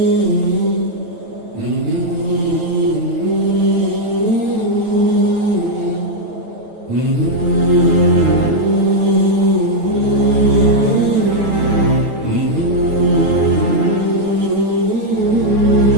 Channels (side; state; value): left; late; 9.1 ms